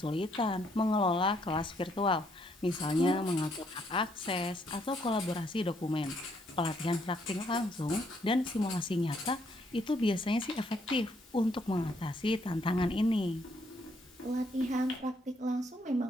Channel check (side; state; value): both; normal; correlation 0.71